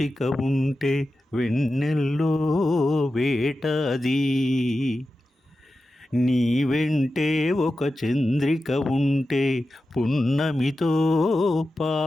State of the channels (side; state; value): both; normal; correlation 0.92